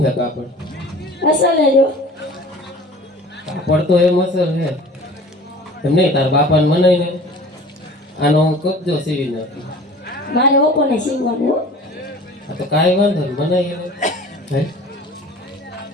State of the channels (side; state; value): both; normal; correlation 0.43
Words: છે કાપડ? અસલ લેજો. કાપડ તો એમ અસર છે એમ નહીં. તાર બાપાને મનાઈ ને આનો હું કબજો સીવી નાખું. મારે ઓપોને સીવવાનું હો. આ તો કાંઈ વાંધો નહીં, મનાઈ એને. હે?